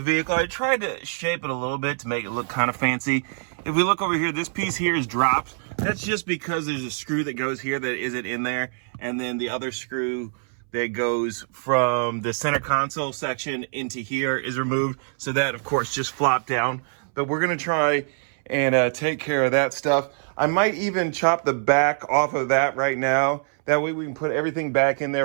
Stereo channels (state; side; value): silent; left; 62 dB below the other